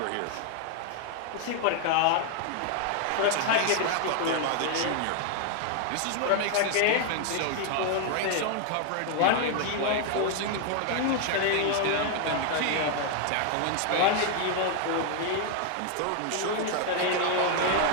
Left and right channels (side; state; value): both; different; correlation 0.00